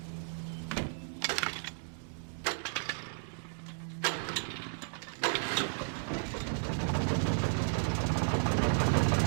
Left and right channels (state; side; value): silent; left; digital silence